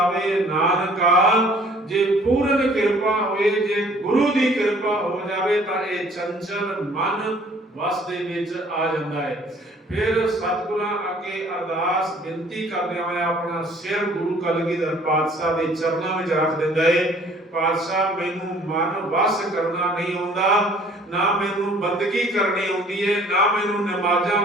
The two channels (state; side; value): normal; both; correlation 0.56